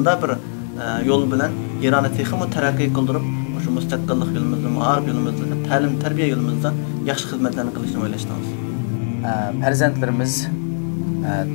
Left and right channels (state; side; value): silent; right; digital silence